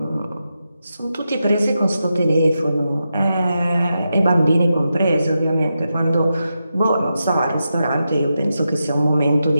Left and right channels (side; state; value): both; inverted; correlation -0.88